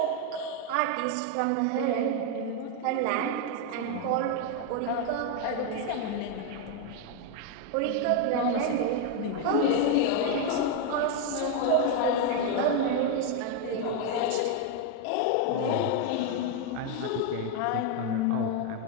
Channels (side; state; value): both; different; correlation 0.01